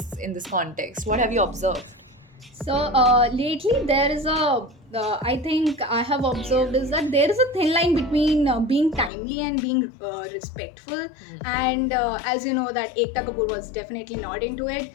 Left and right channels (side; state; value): right; drops out; at 9.1 s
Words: in this context? What have you observed? So lately there is I think I have observed is that there is a thin line between being timely and being respectful. And as you know that Ekta Kapoor was definitely not into it,